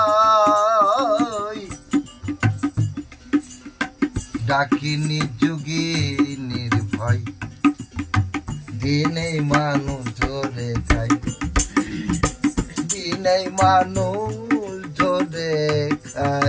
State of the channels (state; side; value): identical; both; correlation 1.00